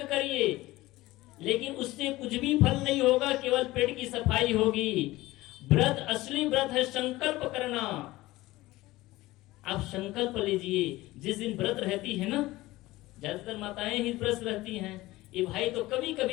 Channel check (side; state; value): right; quieter; 18.4 dB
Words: करिए, लेकिन उससे कुछ भी फल नहीं होगा, केवल पेट की सफाई होगी। व्रत, असली व्रत है संकल्प करना। आप संकल्प लीजिए। जिस दिन व्रत रहती है ना, ज्यादातर माताएं ही व्रत रहती हैं, ये भाई तो कभी